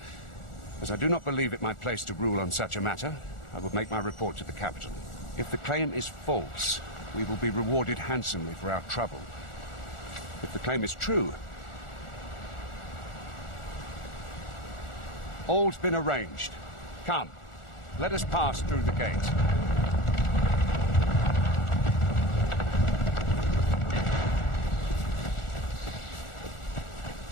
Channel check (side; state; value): right; late; 1.4 ms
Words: as I do not believe it my place to rule on such a matter, I will make my report to the capital. If the claim is false, we will be rewarded handsomely for our trouble. If the claim is true, all's been arranged. Come, let us pass through the gate.